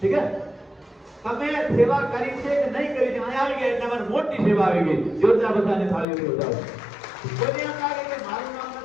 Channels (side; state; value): right; drops out; at 6.1 s